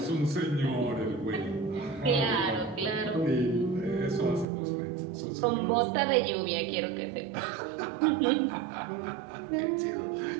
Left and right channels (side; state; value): left; drops out; at 4.5 s